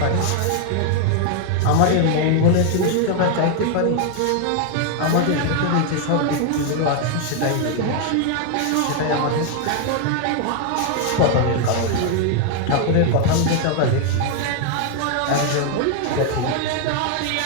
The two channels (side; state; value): both; different; correlation 0.00